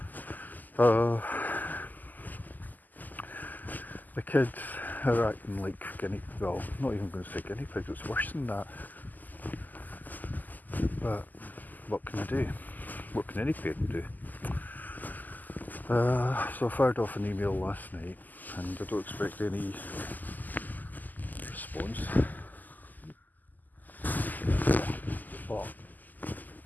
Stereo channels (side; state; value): right; late; 0.084 ms